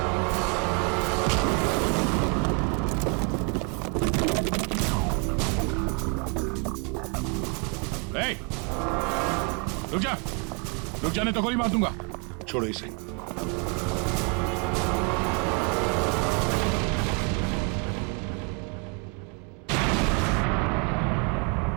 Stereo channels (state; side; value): quieter; left; 33.4 dB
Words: रुक जाने तो गोली मार दूंगा। छोड़ो इसे।